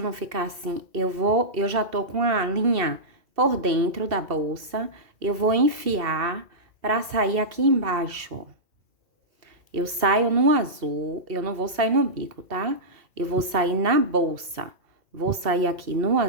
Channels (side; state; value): left; late; 2.4 ms